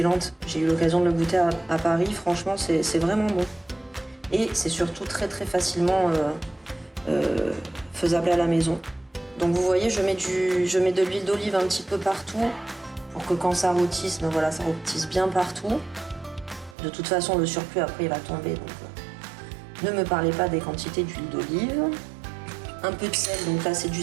J'ai eu l'occasion de le goûter à Paris, franchement c'est vraiment bon. Et c'est surtout très très facilement faisable à la maison. Donc vous voyez, je mets de l'huile d'olive un petit peu partout, pour que quand ça rôtisse, ben voilà, ça rôtisse bien partout. De toute façon, le surplus après il va tomber, donc ne me parlez pas des quantités d'huile d'olive. Un peu de sel, donc là c'est du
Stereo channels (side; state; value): left; drops out; at 16.8 s